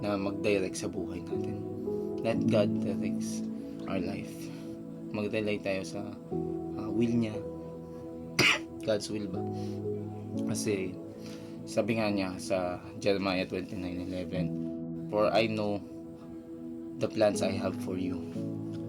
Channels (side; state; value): both; identical; correlation 1.00